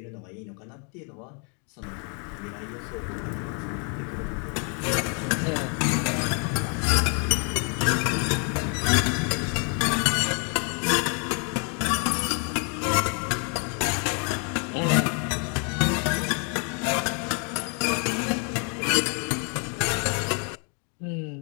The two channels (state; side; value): quieter; right; 38.4 dB